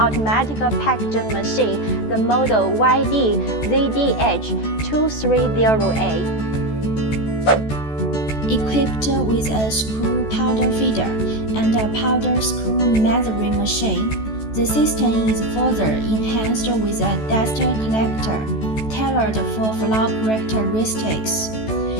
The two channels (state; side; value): late; right; 14 ms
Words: packaging machine, the model YD-ZDH230A. Equipped with a screw powder feeder and a powder screw measuring machine, the system is further enhanced with a dust collector tailored for flow characteristics.